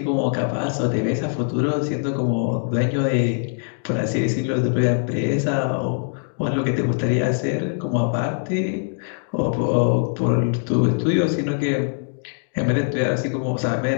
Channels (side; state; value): right; silent; digital silence